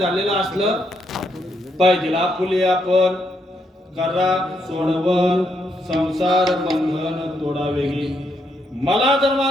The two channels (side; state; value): both; normal; correlation 0.77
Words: असलं पाहिजे. आपुले आपण करा सोडवण संसार बंधन तोडा वेगळी. मला